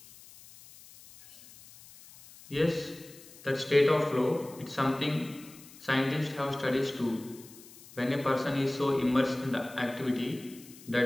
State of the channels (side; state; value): left; noise; hiss, 20 dB below the sound